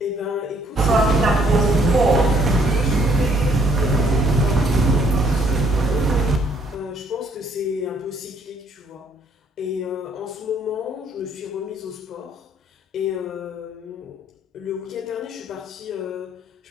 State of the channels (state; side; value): normal; both; correlation 0.65